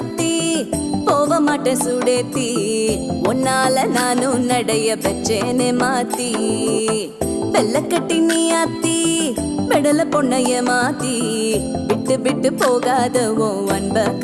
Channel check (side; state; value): both; identical; correlation 1.00